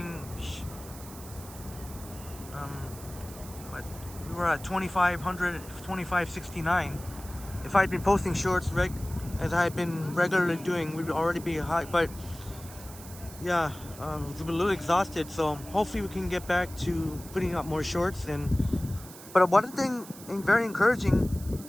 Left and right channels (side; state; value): right; noise; hiss, 16 dB below the sound